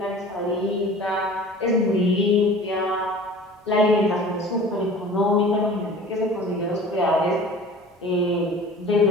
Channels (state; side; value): normal; both; correlation 0.43